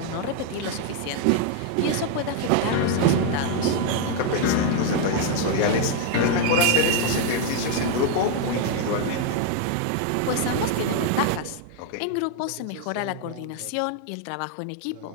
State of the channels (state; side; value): different; both; correlation 0.01